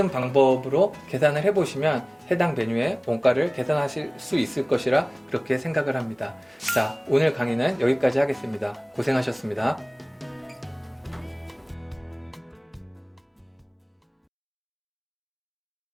방법으로 계산을 해보시면 해당 메뉴의 원가를 계산하실 수 있을 것이라 그렇게 생각을 합니다. 자, 오늘 강의는 여기까지 하겠습니다. 고생하셨습니다.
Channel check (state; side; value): identical; both; correlation 1.00